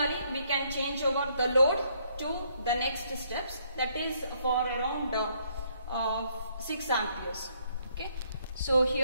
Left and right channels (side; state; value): both; inverted; correlation -0.69